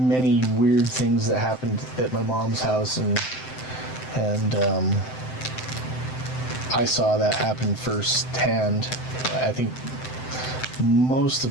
weird things that happened at my mom's house, and I saw that happen firsthand. I think most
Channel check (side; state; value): right; late; 7.8 ms